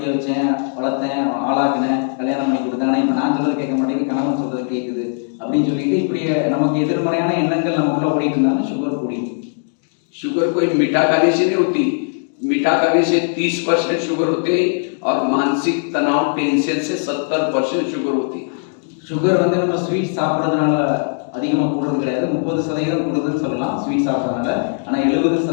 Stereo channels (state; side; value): silent; right; digital silence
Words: வச்சேன், வளர்த்தேன், ஆளாக்கினேன், கல்யாணம் பண்ணி கொடுத்தேன், ஆனால் இப்போ நான் சொல்றது கேட்க மாட்டேங்குது, கணவன் சொல்றது கேட்குது அப்படின்னு சொல்லிட்டு இப்படி நமக்கு எதிர்மறையான எண்ணங்கள் நமக்குள்ள ஓடிட்டு இருந்தாலும் சுகர் கூடிடும். शुगर कोई मीठा खाने से नहीं होती, मीठा खाने से 30% शुगर होते हैं और मानसिक तनाव टेंशन से 70% शुगर होती है। சுகர் வந்து நம்ம ஸ்வீட் சாப்பிட்றதுனால அதிகமாக கூடுறது கிடையாது. 30% கூடுதுன்னு சொல்லலாம் ஸ்வீட் சாப்பிட்றதுனால. ஆனால்